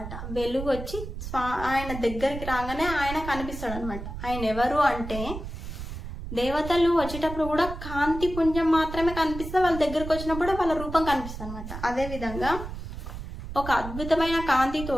వెలుగు వచ్చి ఆయన దగ్గరికి రాగానే ఆయన కనిపిస్తాడు అనమాట. ఆయన ఎవరు అంటే దేవతలు వచ్చేటప్పుడు కూడా కాంతి పుంజం మాత్రమే కనిపిస్తే వాళ్ళ దగ్గరకు వచ్చినప్పుడు వాళ్ళ రూపం కనిపిస్తుంది అనమాట. అదే విధంగా ఒక అద్భుతమైన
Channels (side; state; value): right; noise; rumble, 9 dB below the sound